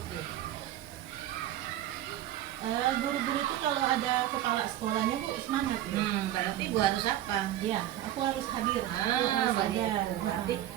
tuh? guru-guru itu kalau ada kepala sekolahnya Bu semangat ya. Berarti Ibu harus apa? Iya, aku harus hadir. Aku Ah, harus ada. begitu. Berarti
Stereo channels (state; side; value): quieter; left; 13.0 dB